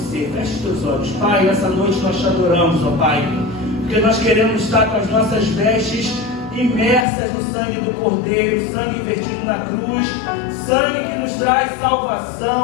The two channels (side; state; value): right; drops out; at 7.1 s